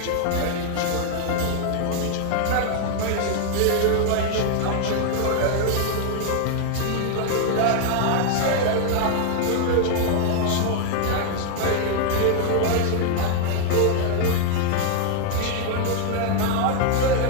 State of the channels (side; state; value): both; different; correlation 0.00